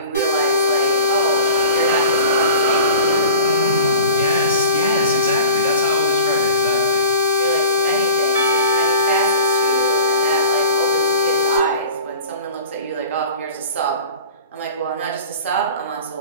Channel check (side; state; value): both; inverted; correlation -0.42